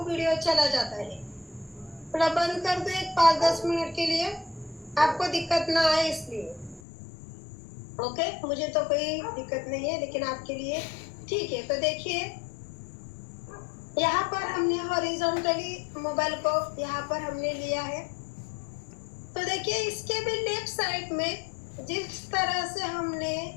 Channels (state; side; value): drops out; right; at 6.8 s